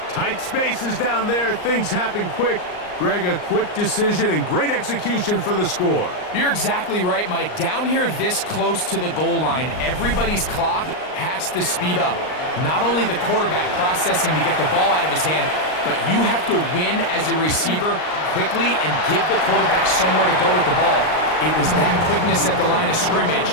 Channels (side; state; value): right; late; 39 ms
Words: Tight spaces down there. Things happen quick. Greg, a quick decision and great execution for the score. You're exactly right, Mike. Down here this close to the goal line, everybody's clock has to speed up. Not only the quarterback processing to get the ball out of his hand, but you have to win as a receiver quickly and give the quarterback somewhere to go with the ball. It was that quickness at the line of scrimmage